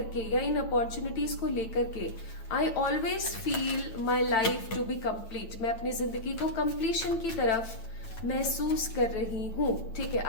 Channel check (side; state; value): right; late; 8.9 ms